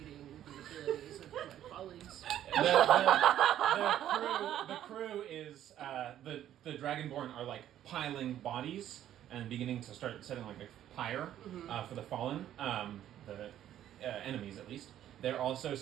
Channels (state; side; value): quieter; left; 11.5 dB